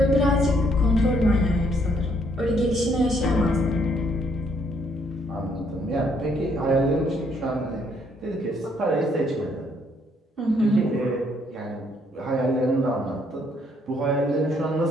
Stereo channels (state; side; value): normal; both; correlation 0.69